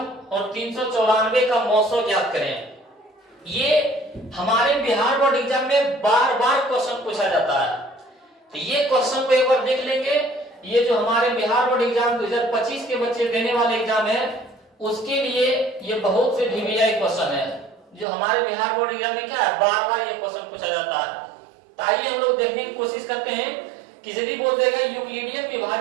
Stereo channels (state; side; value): drops out; left; at 18.1 s